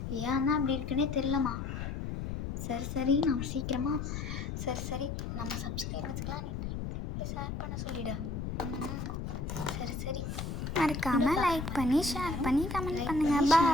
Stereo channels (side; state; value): left; noise; rumble, 4 dB below the sound